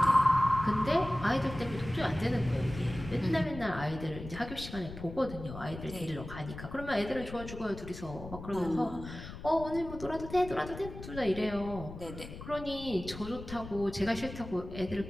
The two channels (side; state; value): left; noise; rumble, 12 dB below the sound